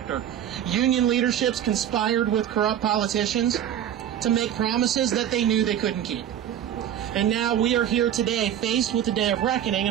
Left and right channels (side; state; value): left; quieter; 10.4 dB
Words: Union leaderships conspired with corrupt politicians to make promises that they knew they couldn't keep. And now we are here today, faced with the day of reckoning,